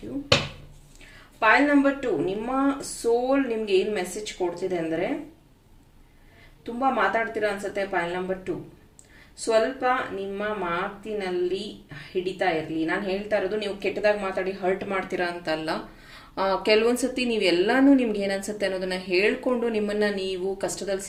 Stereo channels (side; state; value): both; identical; correlation 1.00